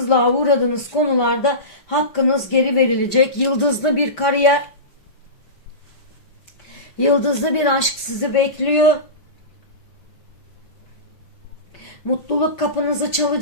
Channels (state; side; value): late; right; 5.1 ms